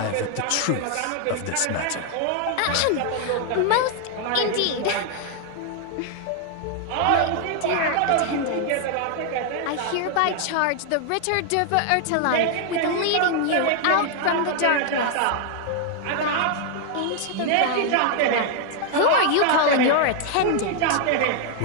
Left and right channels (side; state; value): both; different; correlation 0.00